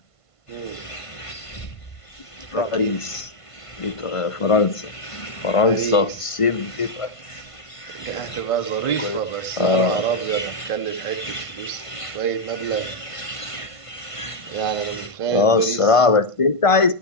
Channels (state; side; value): late; right; 1.5 ms